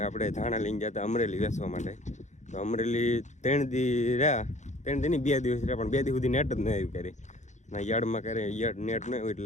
આપણે ધાણા લઈને ગયા હતા અમરેલી વેચવા માટે. તો અમરેલી 3 દી રહ્યા, 3 દી નહીં 2 દિવસ રહ્યા, પણ 2 દી સુધી નેટ જ ન આવ્યું ક્યારે. ના યાર્ડમાં ક્યારે નેટ ન આવ્યું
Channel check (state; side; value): late; right; 0.34 ms